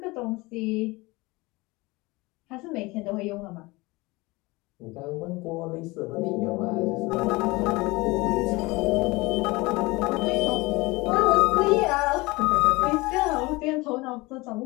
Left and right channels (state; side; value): quieter; right; 23.0 dB